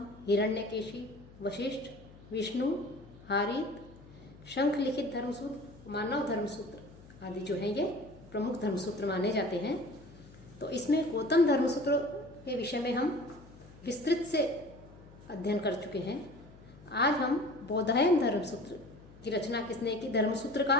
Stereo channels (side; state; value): left; noise; hum, 21 dB below the sound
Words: हिरण्यकेशी, वशिष्ठ, विष्णु, हारीत, शंख लिखित धर्मसूत्र, मानव धर्मसूत्र आदि जो हैं ये प्रमुख धर्मसूत्र माने जाते हैं। तो इसमें गौतम धर्मसूत्र के विषय में हम विस्तृत से अध्ययन कर चुके हैं। आज हम बोधायन धर्मसूत्र की रचना किसने की,